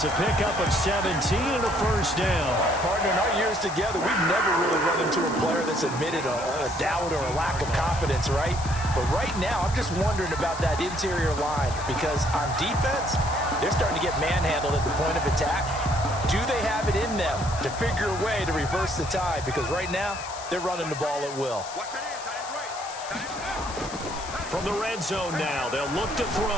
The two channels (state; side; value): noise; left; hiss, 13 dB below the sound